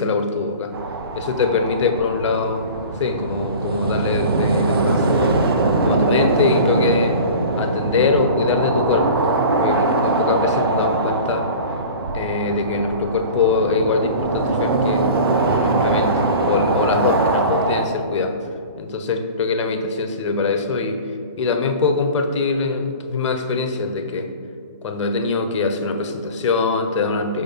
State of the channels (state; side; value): inverted; both; correlation -0.39